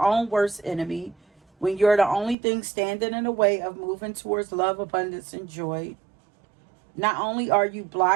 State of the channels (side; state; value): left; drops out; at 2.4 s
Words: worst enemy, when you're the only thing standing in the way of moving towards love, abundance, and joy. Not only are you